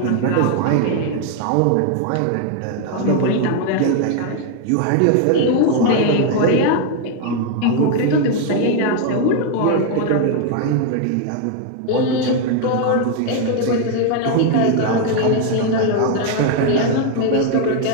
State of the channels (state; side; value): different; both; correlation 0.01